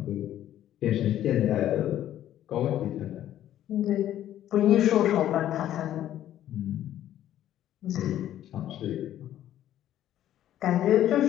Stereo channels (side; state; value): right; quieter; 12.1 dB